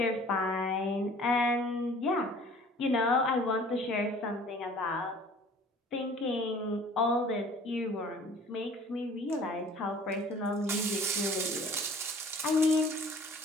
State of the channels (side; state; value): both; normal; correlation 0.50